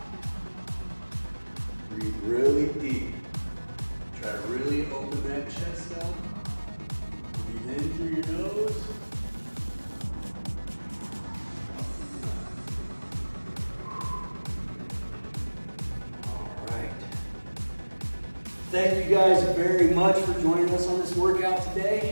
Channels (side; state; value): both; inverted; correlation -1.00